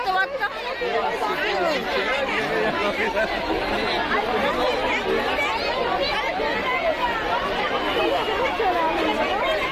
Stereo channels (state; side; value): identical; both; correlation 1.00